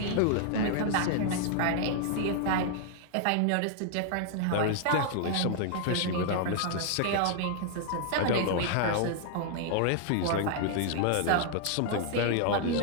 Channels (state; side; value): different; both; correlation 0.00